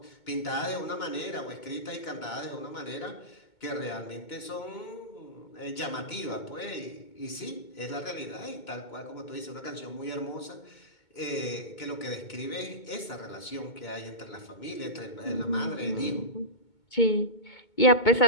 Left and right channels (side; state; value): right; late; 2.2 ms